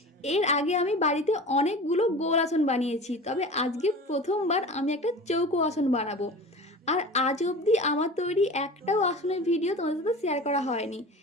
এর আগে আমি বাড়িতে অনেকগুলো গোল আসন বানিয়েছি, তবে আজকে প্রথমবার আমি একটা চৌকো আসন বানাবো। আর আজ অবধি আমার তৈরি একটাও আসনের ভিডিও তোমাদের সাথে শেয়ার করা হয়নি,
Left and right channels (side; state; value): both; normal; correlation 0.36